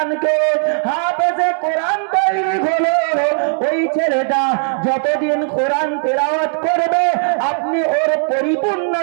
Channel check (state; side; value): silent; left; digital silence